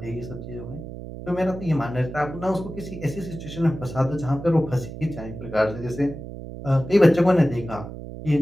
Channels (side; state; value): right; noise; hum, 11 dB below the sound